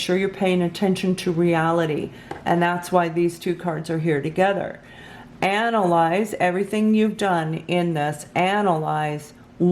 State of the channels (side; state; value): both; identical; correlation 1.00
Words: you're paying attention to reality. And that's why these two cards are here together. Analyze everything you've done in this. Analyze